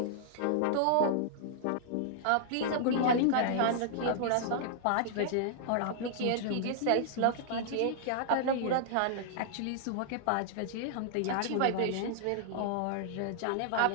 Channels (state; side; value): different; both; correlation -0.01